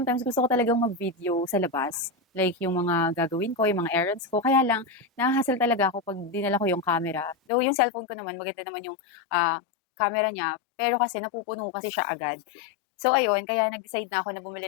gusto ko talagang mag-video sa labas. Like yung mga gagawin ko, yung mga errands ko. Kaya lang, nahahassle talaga ako pag dinala ko yung camera. Though yung cellphone ko naman, maganda naman yung camera niya. Pero kasi napupuno kasi siya agad. So ayun, kaya nag-decide na ako na bumili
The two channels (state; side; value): drops out; right; at 7.4 s